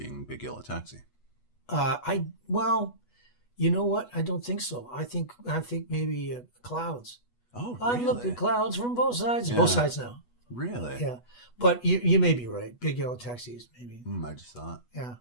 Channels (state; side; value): late; right; 8.2 ms